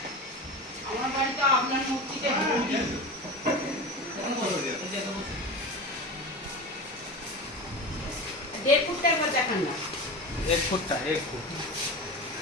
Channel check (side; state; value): both; normal; correlation 0.28